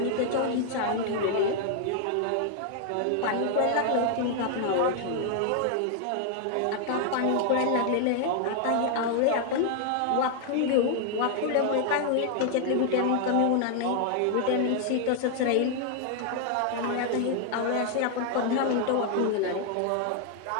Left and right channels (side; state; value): both; different; correlation 0.00